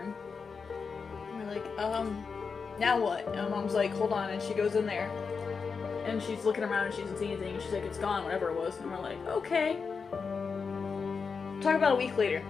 And we're like, now what? And Mom's like, hold on. And she goes in there. And she's looking around and she doesn't see anything. And she's like, it's gone, whatever it was. And we're like, okay. Talk about a week later.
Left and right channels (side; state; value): right; quieter; 5.3 dB